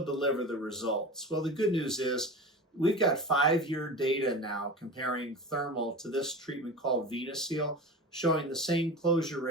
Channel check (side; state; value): both; normal; correlation 0.31